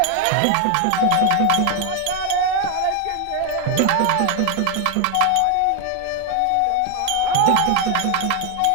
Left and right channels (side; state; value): both; different; correlation 0.01